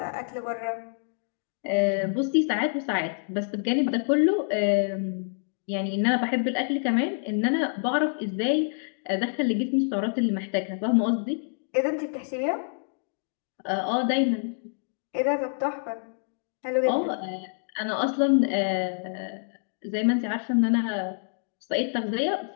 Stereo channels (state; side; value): silent; right; digital silence